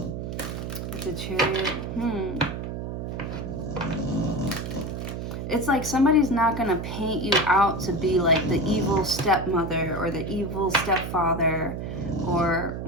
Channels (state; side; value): noise; right; hum, 5 dB below the sound